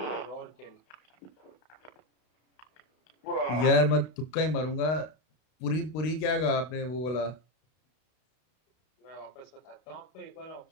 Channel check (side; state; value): right; late; 32 ms